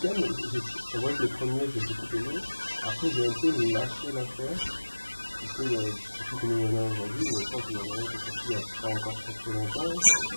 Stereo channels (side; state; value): both; inverted; correlation -1.00